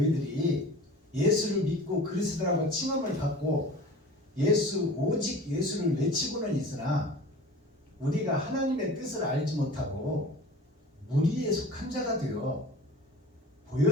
예수를 믿고 그리스도라고 칭함을 받고 오직 예수를 외치고는 있으나 우리가 하나님의 뜻을 알지 못하고 무리에 속한 자가 되어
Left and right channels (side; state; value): both; normal; correlation 0.40